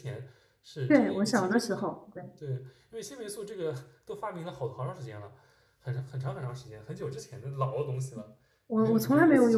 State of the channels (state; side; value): identical; both; correlation 1.00